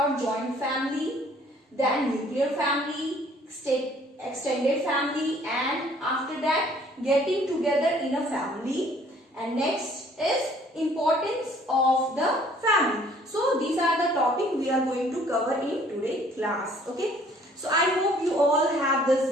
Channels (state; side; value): normal; both; correlation 0.58